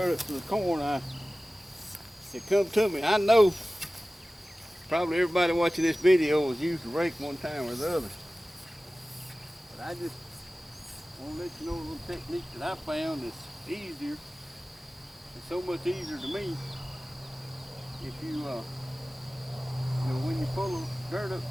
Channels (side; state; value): both; normal; correlation 0.97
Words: up to the corn, it come to me. I know probably everybody watching this video has used a rake one time or the other, but I just want to let you know a little technique that I found that's easier. It's so much easier to me if when you pull the dirt